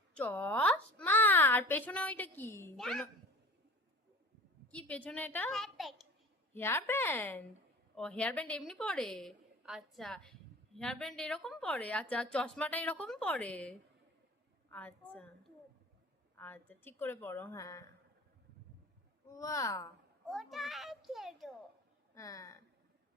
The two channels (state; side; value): normal; both; correlation 0.39